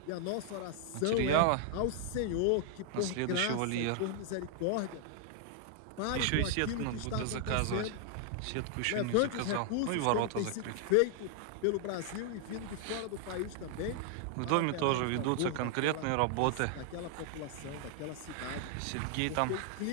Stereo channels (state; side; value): different; both; correlation 0.00